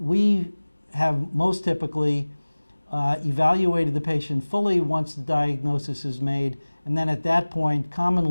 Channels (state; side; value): inverted; both; correlation -1.00